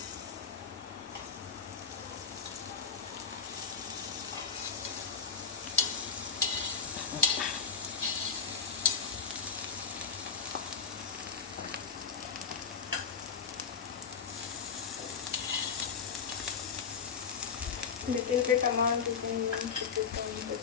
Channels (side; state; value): right; quieter; 6.3 dB